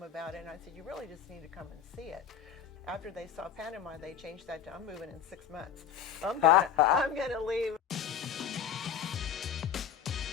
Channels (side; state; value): right; quieter; 8.5 dB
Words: about it, and I said, you really just need to come and see it. After they saw Panama, they changed that to, I'm moving in 6 months. I'm gonna leave.